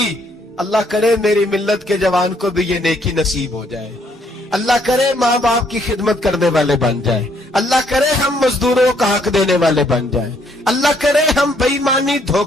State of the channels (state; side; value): normal; both; correlation 0.69